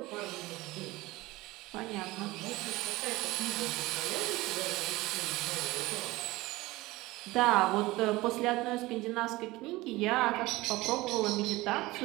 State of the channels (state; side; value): quieter; left; 19.7 dB